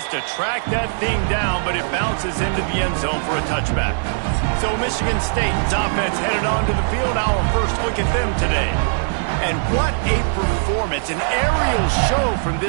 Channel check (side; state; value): left; silent; digital silence